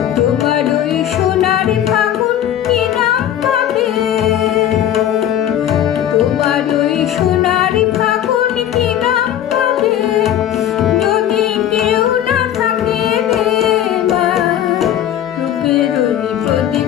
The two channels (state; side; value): quieter; right; 10.9 dB